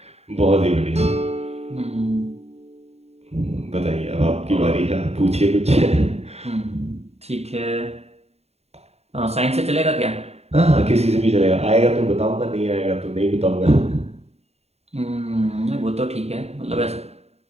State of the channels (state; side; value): late; left; 0.30 ms